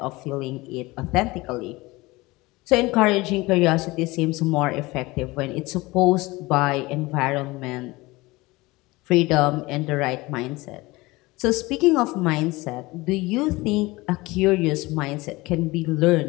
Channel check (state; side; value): quieter; right; 21.6 dB